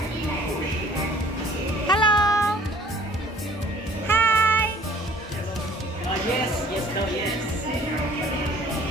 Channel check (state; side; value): normal; both; correlation 0.54